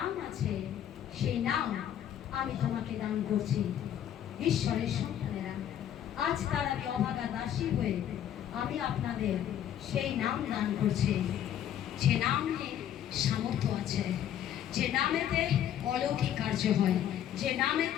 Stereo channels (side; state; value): right; quieter; 10.5 dB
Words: আছে সেই নাম আমি তোমাকে দান করছি। ঈশ্বরের সন্তানেরা, আজ তার আমি অভাগা দাসী হয়ে আমি আপনাদের সেই নাম দান করছি, যে নামে সামর্থ্য আছে, যে নামেতে অলৌকিক কার্য হয়, যে